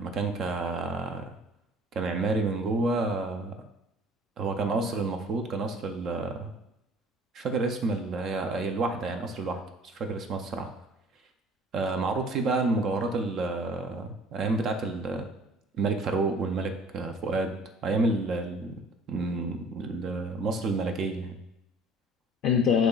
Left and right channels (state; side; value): normal; both; correlation 0.50